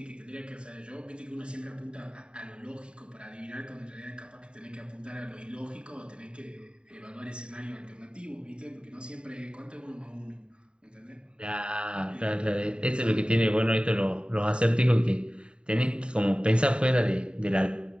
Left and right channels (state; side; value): late; left; 0.051 ms